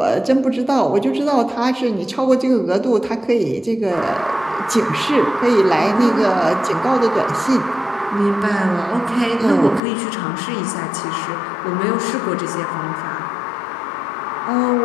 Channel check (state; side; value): drops out; right; at 9.8 s